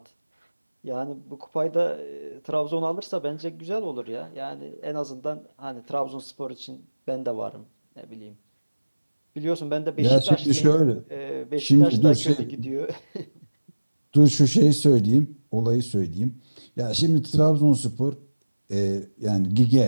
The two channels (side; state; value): both; inverted; correlation -1.00